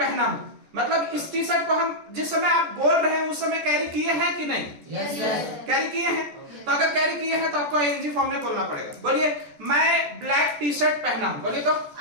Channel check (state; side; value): late; left; 14 ms